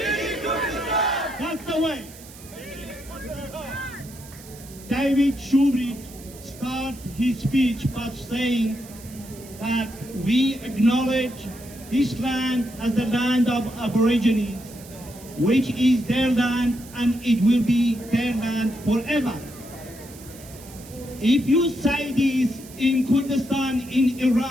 That's the way. David Shoebridge started his speech by saying that we acknowledge this land as the land of Aborigines, which is their land and it will be their land forever. If you say this in Kurdistan in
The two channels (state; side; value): noise; right; hiss, 19 dB below the sound